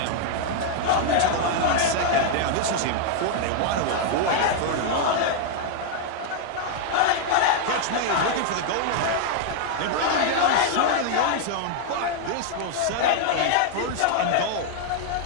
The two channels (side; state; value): both; different; correlation 0.00